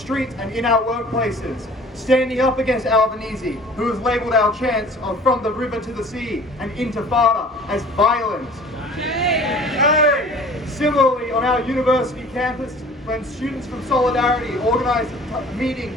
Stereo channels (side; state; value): both; normal; correlation 0.47